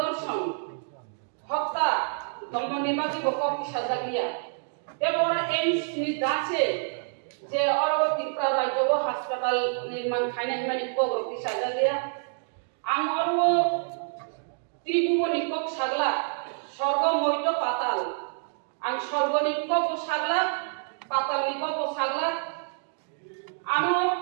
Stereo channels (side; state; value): left; silent; digital silence